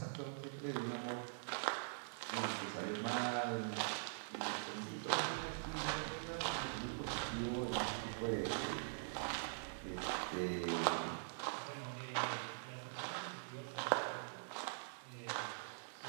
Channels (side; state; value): left; silent; digital silence